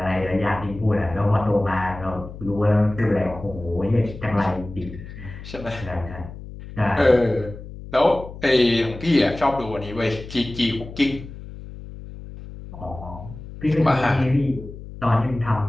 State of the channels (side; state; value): left; noise; hum, 13 dB below the sound